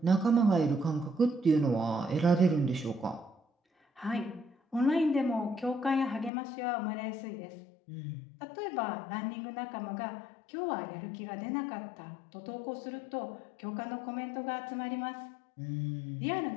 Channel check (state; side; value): drops out; right; at 6.3 s